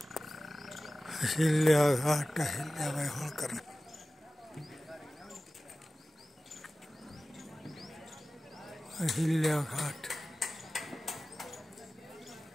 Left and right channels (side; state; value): both; normal; correlation 0.96